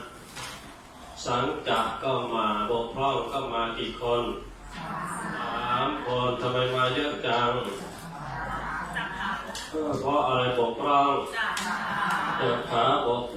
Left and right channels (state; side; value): identical; both; correlation 1.00